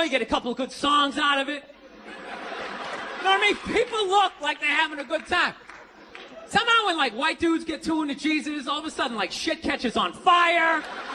you get a couple of good songs out of it. You know what I mean? People look like they're having a good time. Somehow when, like, white dudes get too into Jesus, all of a sudden, like, shit catches on fire.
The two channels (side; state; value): both; identical; correlation 1.00